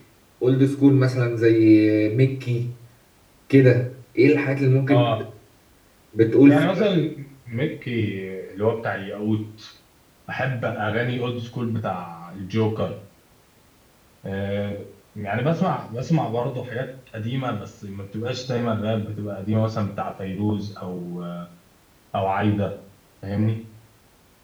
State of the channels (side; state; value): both; identical; correlation 1.00